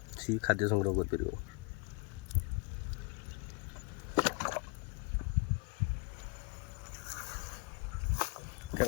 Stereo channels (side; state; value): right; quieter; 31.6 dB